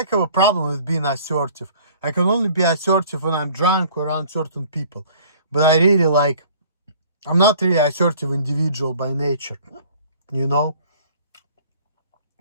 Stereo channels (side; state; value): both; inverted; correlation -0.52